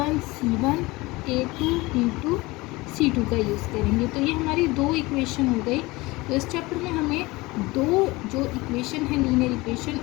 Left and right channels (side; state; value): right; quieter; 21.9 dB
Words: c1 a2 b2 c2 का यूज़ करेंगे। तो ये हमारी दो इक्वेशन हो गई। तो इस चैप्टर में हमें दो जो इक्वेशन है लीनियर इक्वेशन